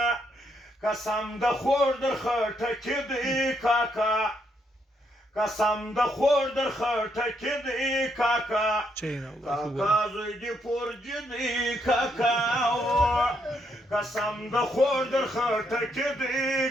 قسم د خور در خټکې دی کاکا قسم د خور در خټکې دی کاکا کاکا زوی دی پورجې دی کاکا قسم د خور در خټکې دی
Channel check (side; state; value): both; normal; correlation 0.76